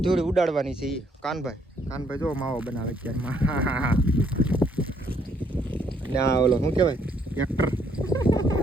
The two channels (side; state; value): both; normal; correlation 0.69